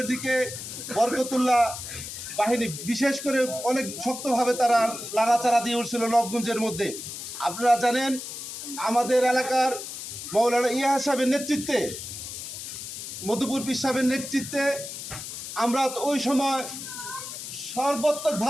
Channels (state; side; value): noise; left; hiss, 9 dB below the sound